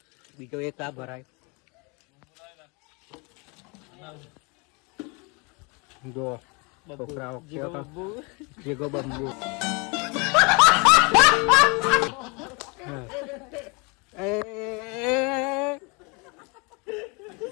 બીજો એક આ ભરાય જો છોકરાઓ જેગો બંબુ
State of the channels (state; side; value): quieter; right; 30.2 dB